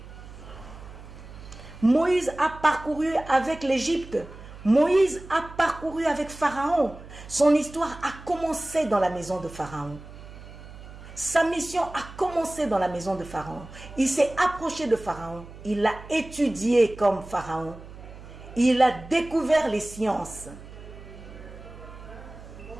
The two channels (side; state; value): right; noise; hum, 16 dB below the sound